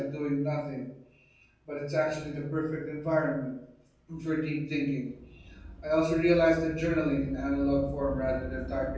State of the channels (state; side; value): identical; both; correlation 1.00